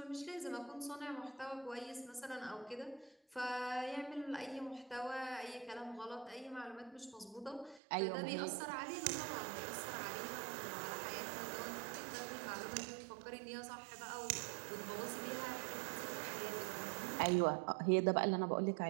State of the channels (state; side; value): drops out; left; at 7.8 s